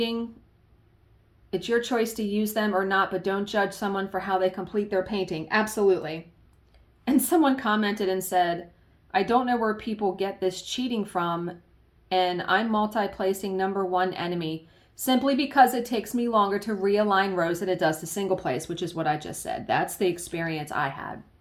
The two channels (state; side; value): identical; both; correlation 1.00